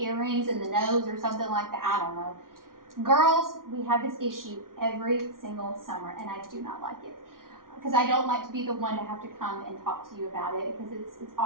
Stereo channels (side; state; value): left; late; 0.90 ms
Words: in the nose or something like that. I don't know. Girls, we have this issue every single summer, and I do not like it. Because I don't like to be the one to have to come and talk to you about it, because it's